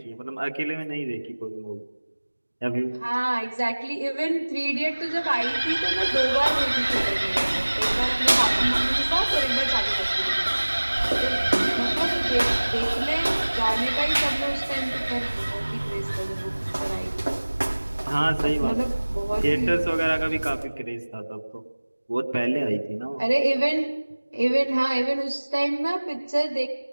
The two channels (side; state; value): both; inverted; correlation -1.00